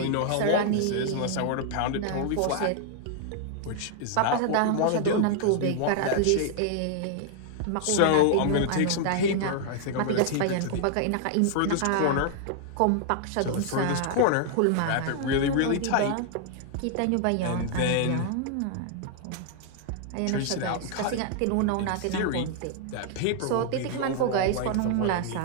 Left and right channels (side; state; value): both; different; correlation 0.00